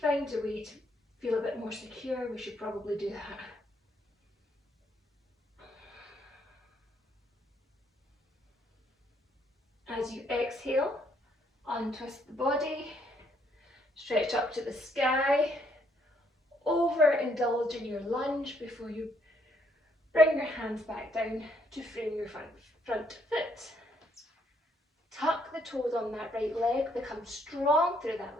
a way to feel a bit more secure, we should probably do that. As you exhale, untwist the body, stretch up to the sky, overindulge in your lunge before you bring your hands back down to frame your front foot. Tuck the toes on that right leg, become strong through that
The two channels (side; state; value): both; normal; correlation 0.70